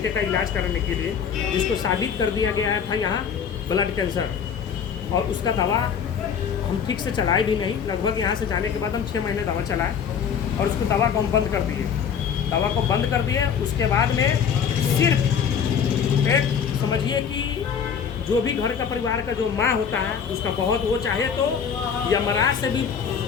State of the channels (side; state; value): right; quieter; 7.2 dB